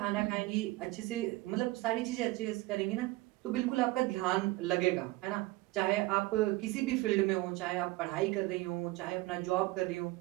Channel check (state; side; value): quieter; left; 20.0 dB